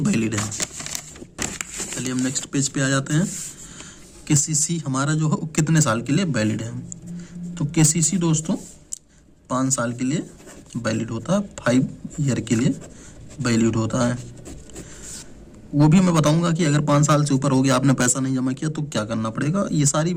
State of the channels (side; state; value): both; identical; correlation 1.00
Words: है। चलिए हम नेक्स्ट पेज पे आ जाते हैं। केसीसी हमारा जो है कितने साल के लिए वैलिड है। तो केसीसी दोस्तों 5 साल के लिए वैलिड होता है, 5 ईयर के लिए वैलिड होता है। वो भी मैं बताऊंगा कि अगर 5 साल से ऊपर हो गया, आपने पैसा नहीं जमा किया तो क्या करना पड़ेगा। ये सारी